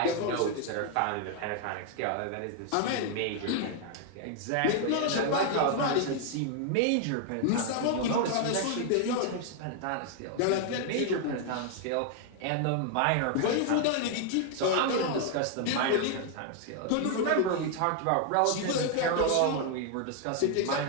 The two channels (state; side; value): different; both; correlation 0.00